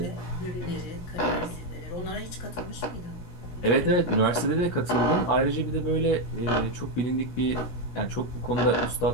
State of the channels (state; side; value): late; right; 17 ms